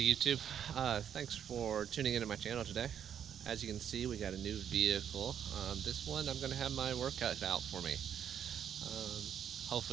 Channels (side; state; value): left; quieter; 8.8 dB